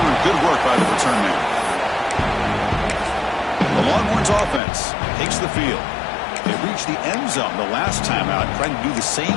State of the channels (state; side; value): drops out; right; at 4.6 s